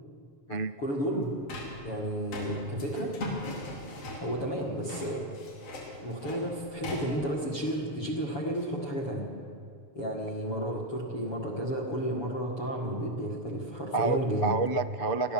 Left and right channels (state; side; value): late; right; 7.1 ms